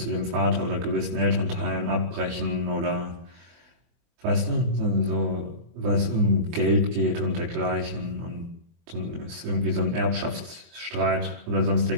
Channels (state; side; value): late; left; 24 ms